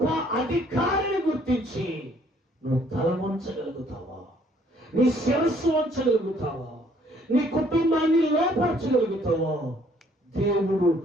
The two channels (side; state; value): both; normal; correlation 0.63